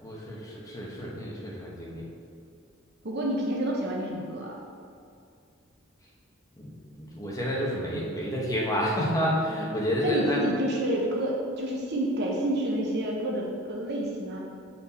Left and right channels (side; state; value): both; normal; correlation 0.39